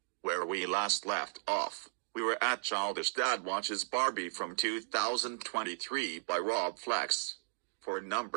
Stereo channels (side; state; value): left; silent; digital silence